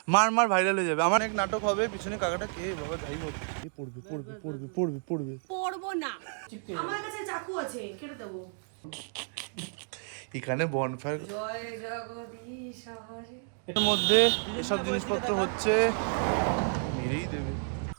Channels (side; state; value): left; silent; 57 dB below the other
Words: মার মার, ভাইরাল হয়ে যাবে। আমার এক নাটক হবে, পিছনে কাকাটা কে বাবা, যাই হোক এ পড়বে পড়বে পড়বে পড়বে পড়বে। পড়বো না, আমার কাছে চাকু আছে, কেটে দেবো। এখানে বনফায়ার জয় জগদীশ হরে। এর মধ্যে এসব জিনিসপত্র হচ্ছে, মেরেই দেবে।